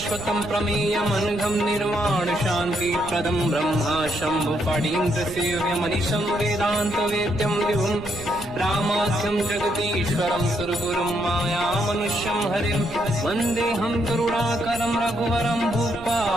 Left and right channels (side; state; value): right; noise; rumble, 16 dB below the sound